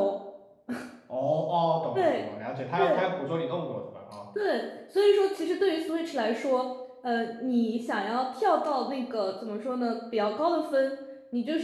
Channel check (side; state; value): both; identical; correlation 1.00